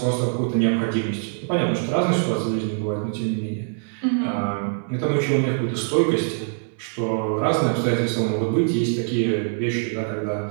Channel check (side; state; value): left; silent; digital silence